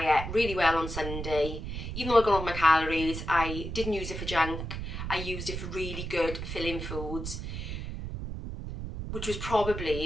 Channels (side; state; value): right; noise; rumble, 6 dB below the sound